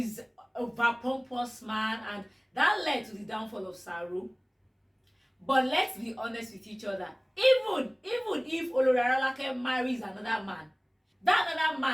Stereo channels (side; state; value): both; identical; correlation 1.00